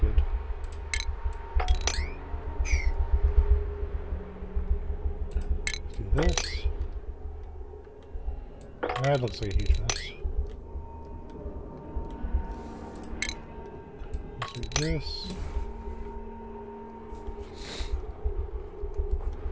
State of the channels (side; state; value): both; identical; correlation 1.00